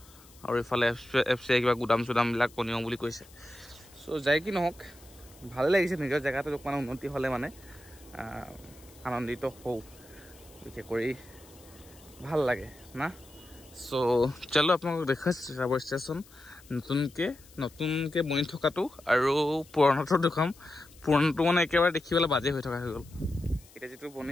আৰু ইফালে এফচি কিবা গুদাম চুদামবিলাক বনিও বুলি কৈছে সো যাই কি নহওক ভালে লাগিছে নিজৰ জেগাটো অকণমান উন্নতি হ'লে মানে আনন্দিত হওঁ বিশেষ কৰি ভাল লাগে না সো চলো আপোনালোকক দেখাইছোঁ তিতাবৰ ষ্টেচন নতুনকৈ বনি থকাটো আৰু পুৰণাটো দেখাম পুৰণাটো মানে একেবাৰে দেখিবলৈ বাজে হৈ থকা হৈ গ'ল এতিয়া যিটো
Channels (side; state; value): left; noise; hiss, 24 dB below the sound